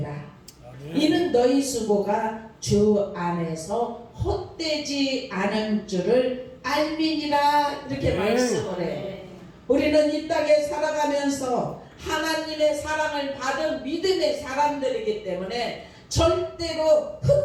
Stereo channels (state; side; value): identical; both; correlation 1.00